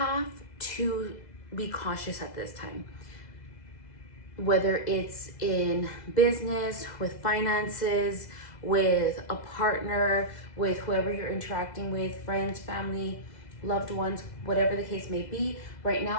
to be cautious at this time. Whether it's in business, with finances, with a partner, with whoever you're interacting with, friends, family, loved ones, whatever the case may be, right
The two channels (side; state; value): right; late; 2.0 ms